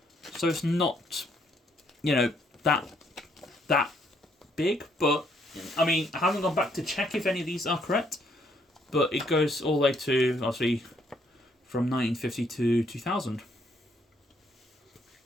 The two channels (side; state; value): both; normal; correlation 0.70